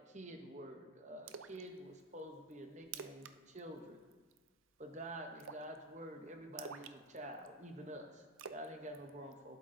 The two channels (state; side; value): normal; both; correlation 0.16